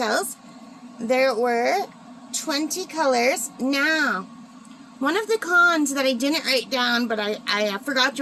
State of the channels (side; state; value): both; identical; correlation 1.00